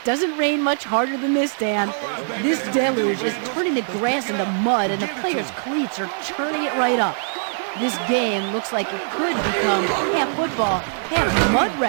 doesn't rain much harder than this, Dan. This deluge is turning the grass into mud, and the players' cleats are churning it right up. This game looks like it could become half football, half mud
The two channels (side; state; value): left; silent; digital silence